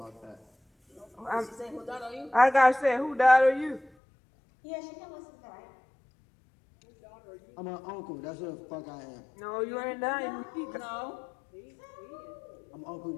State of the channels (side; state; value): right; drops out; at 3.9 s